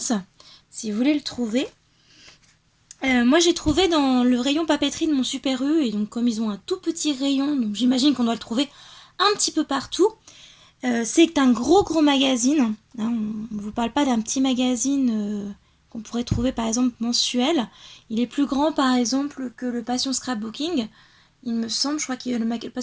si vous voulez le trouver. Moi j'ai trouvé dans le rayon papeterie de mon Super U, et donc comme ils ont un tout petit rayon, donc j'imagine qu'on doit le trouver un petit peu partout. C'est un gros magazine, hein, on ne vous parle pas d'un petit magazine qu'on pourrait trouver par exemple mensuel. Il est plus grand par exemple que le Passion Scrapbooking, il me semble, je crois que le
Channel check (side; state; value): both; identical; correlation 1.00